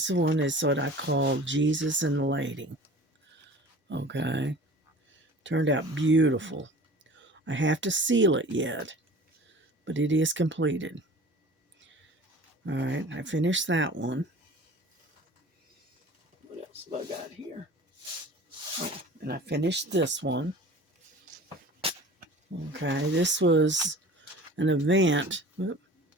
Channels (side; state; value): both; normal; correlation 0.42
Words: one is what I call Jesus and the Lady. Okay, turned out beautiful. I have to seal it yet, but it is completed. All right, I finished that one. What else have I got here? Oh, and I finished this one. Okay, this was an event